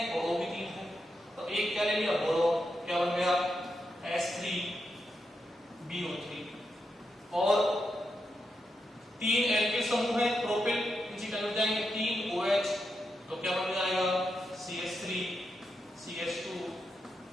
और O भी 3 है, तो एक क्या ले लिया बोरोन, क्या बन गया H3 BO3। और 3 एल्किल समूह है प्रोपिल, नीचे चले जाएंगे 3 OH, तो क्या बन जाएगा CH3 CH2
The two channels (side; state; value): both; normal; correlation 0.85